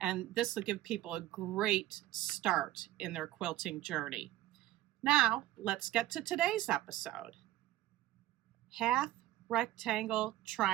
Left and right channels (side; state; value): left; quieter; 15.3 dB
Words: And this will give people a great start in their quilting journey. Now, let's get to today's episode. Half rectangle